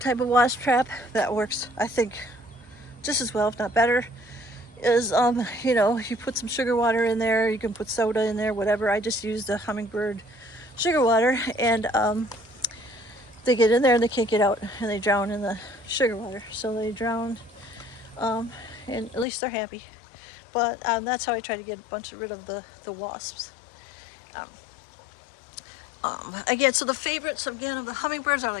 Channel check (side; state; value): right; drops out; at 19.2 s